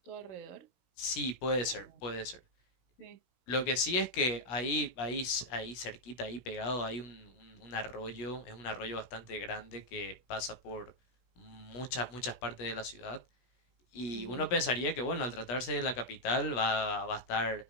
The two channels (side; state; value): right; late; 16 ms